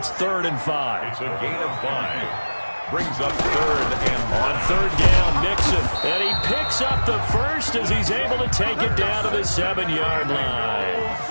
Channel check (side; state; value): both; inverted; correlation -1.00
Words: 3rd and 5. It's a gain of 5. Brings up 3rd and 1. On 3rd down, Mixon. And he picks up the first as he's able to take it down to the 7-yard line.